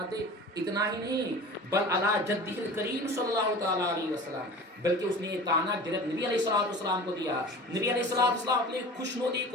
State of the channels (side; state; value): both; normal; correlation 0.38